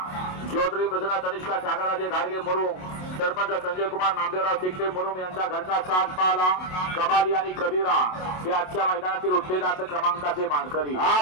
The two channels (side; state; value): right; late; 27 ms